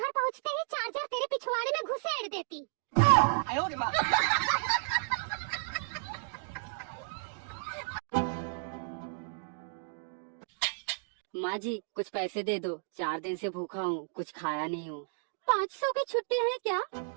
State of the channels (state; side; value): silent; left; digital silence